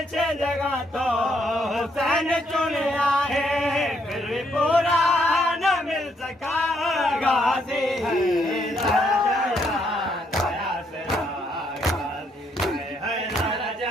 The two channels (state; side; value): normal; both; correlation 0.73